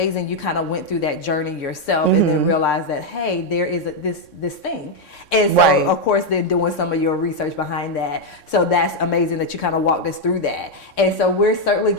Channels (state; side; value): late; right; 3.6 ms